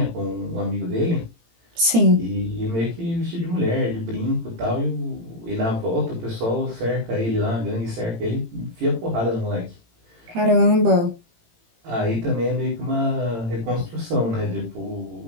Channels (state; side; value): late; left; 18 ms